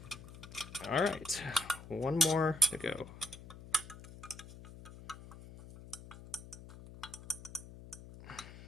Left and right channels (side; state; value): left; noise; hum, 15 dB below the sound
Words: All right, one more to go.